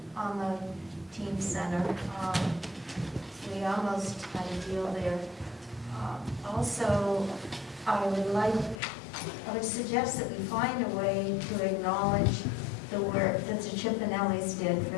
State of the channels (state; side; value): drops out; right; at 8.8 s